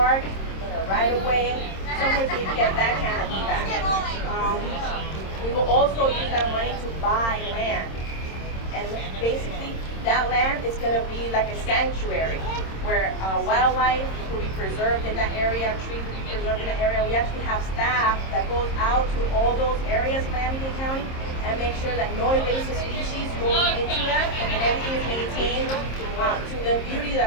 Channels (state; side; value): late; right; 26 ms